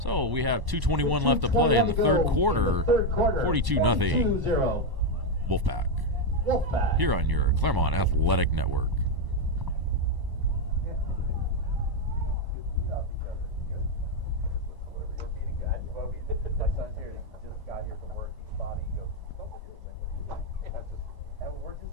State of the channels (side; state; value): left; late; 1.0 ms